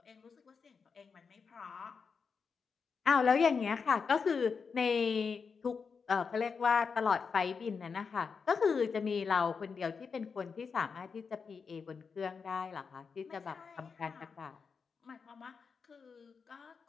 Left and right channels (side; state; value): right; quieter; 5.5 dB